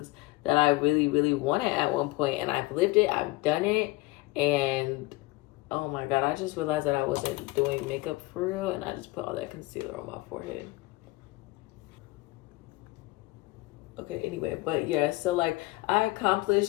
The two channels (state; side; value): quieter; right; 21.0 dB